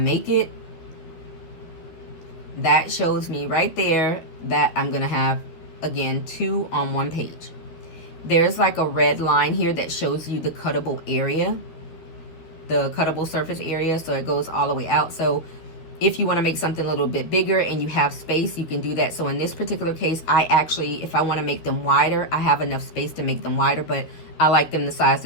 make it. That shows me right there that I'm going to have, again, 2 on 1 page. There's like a red line here that shows you the cuttable area, the cuttable surface area. So it goes all the way out. So if you want to make something a little bit bigger and you have space, you can do that. So in this particular case, I actually, if I want to make them wider, I have enough space to make them wider, but I like them the size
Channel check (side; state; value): right; late; 12 ms